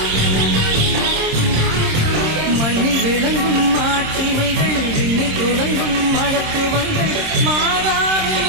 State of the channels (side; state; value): left; late; 26 ms